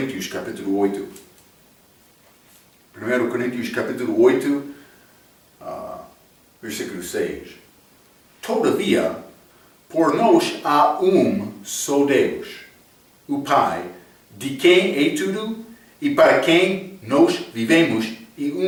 capítulo 8. 1 Coríntios capítulo 8, versículo 6. Todavia, por nós há só Deus, o Pai, de quem é tudo e para quem nós vivemos,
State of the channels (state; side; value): identical; both; correlation 1.00